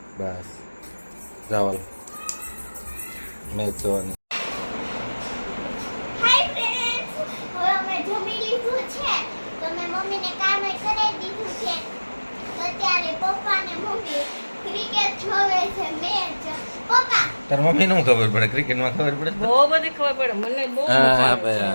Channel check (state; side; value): inverted; both; correlation -1.00